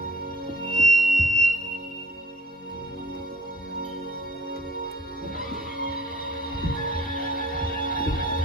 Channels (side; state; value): both; normal; correlation 0.56